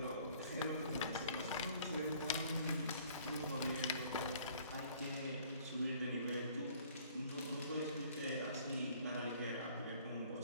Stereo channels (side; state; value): both; inverted; correlation -0.56